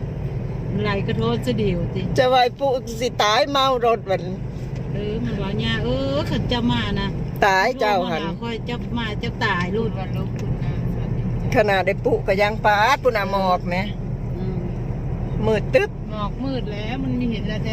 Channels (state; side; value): identical; both; correlation 1.00